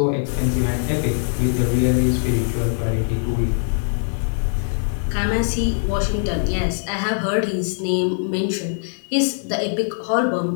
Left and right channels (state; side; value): silent; right; 65 dB below the other